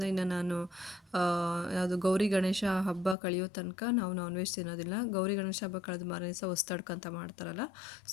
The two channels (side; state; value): right; drops out; at 3.2 s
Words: ಇನ್ನು ನಾನು ಯಾವುದು ಗೌರಿ ಗಣೇಶ ಹಬ್ಬ ಕಳೆಯೋ ತನಕ ನಾವು ನಾನ್ ವೆಜ್ ತಿನ್ನೋದಿಲ್ಲ. ಗೌರಿ ಗಣೇಶ ಹಬ್ಬ ಕಳೆದ ಮಾರನೇ ದಿವಸ ಹೊಸ್ತಡ್ಕಂತ ಮಾಡ್ತಾರಲ್ಲ,